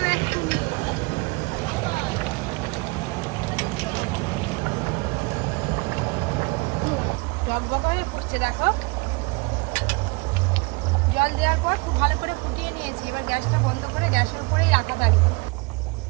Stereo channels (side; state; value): left; quieter; 27.6 dB